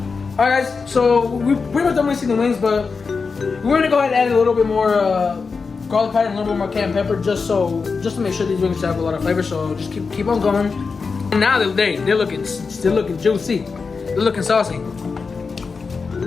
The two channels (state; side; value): quieter; right; 4.8 dB